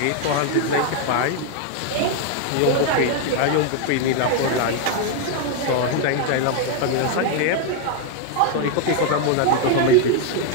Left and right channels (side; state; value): both; different; correlation 0.01